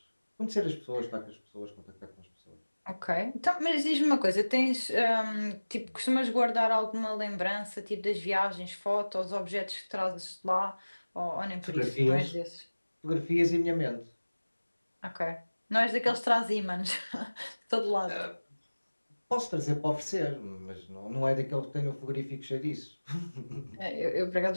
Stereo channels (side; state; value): both; inverted; correlation -1.00